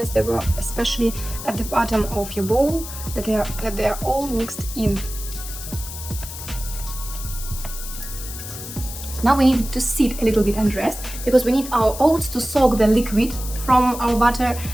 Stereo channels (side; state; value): left; noise; hiss, 10 dB below the sound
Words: that were especially at the bottom of your bowl, that they are all mixed in. Now we need to sit a little bit and rest, because we need our oats to soak the liquid from our butter